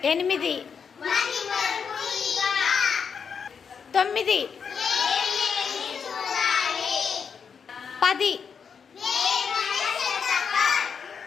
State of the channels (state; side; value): quieter; right; 6.5 dB